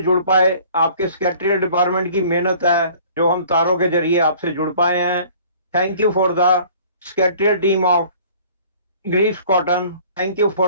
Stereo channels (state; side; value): inverted; both; correlation -0.51